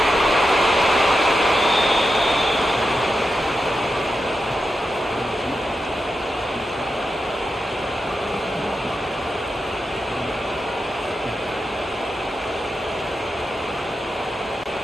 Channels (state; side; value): normal; both; correlation 0.88